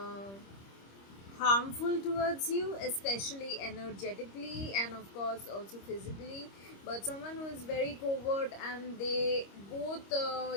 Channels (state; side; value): late; right; 25 ms